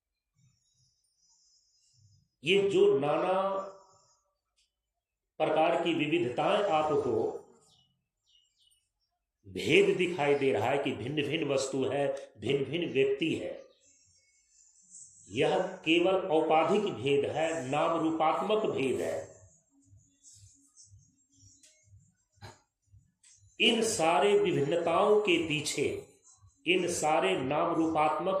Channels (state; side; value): identical; both; correlation 1.00